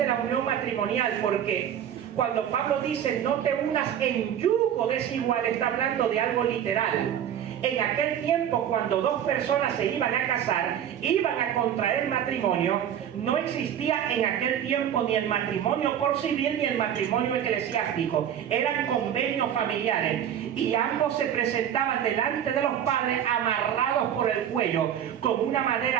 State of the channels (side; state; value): left; quieter; 9.7 dB